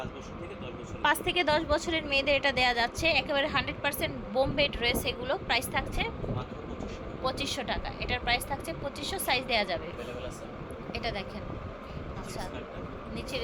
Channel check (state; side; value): identical; both; correlation 1.00